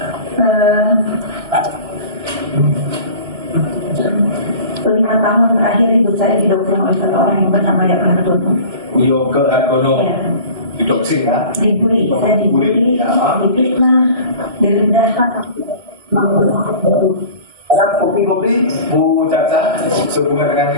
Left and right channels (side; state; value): left; late; 1.6 ms